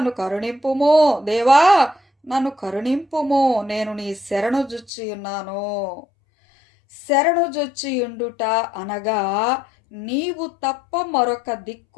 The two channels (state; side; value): drops out; right; at 4.9 s